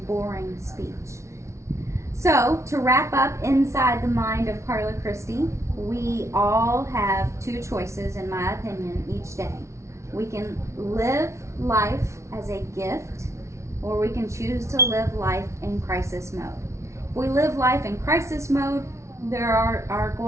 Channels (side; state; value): left; late; 0.14 ms